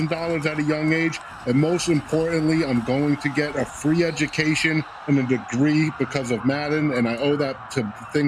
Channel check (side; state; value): both; identical; correlation 1.00